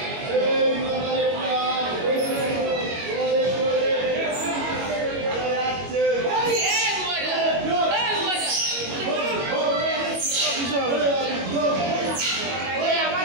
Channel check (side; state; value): left; late; 21 ms